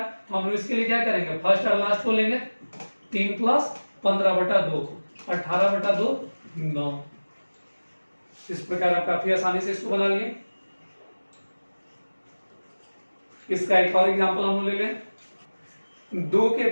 तो हम लोग इसके लिए क्या करेंगे, फर्स्ट और लास्ट को लेंगे। 3 + 15/2, 18/2, 9। इस प्रकार आप काफी आसानी से इसको बना लिए। इसका एक और एग्जाम्पल हम ले लें, 2 के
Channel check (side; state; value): both; inverted; correlation -1.00